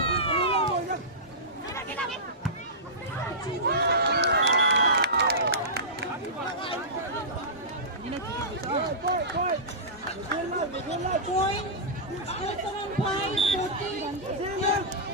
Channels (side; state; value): both; normal; correlation -0.17